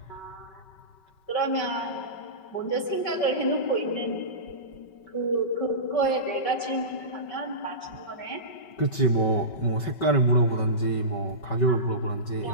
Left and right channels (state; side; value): late; right; 5.2 ms